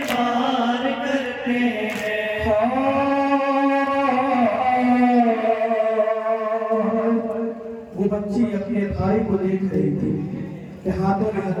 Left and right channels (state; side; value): identical; both; correlation 1.00